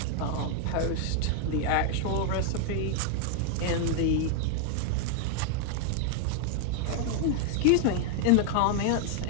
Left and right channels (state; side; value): different; both; correlation 0.00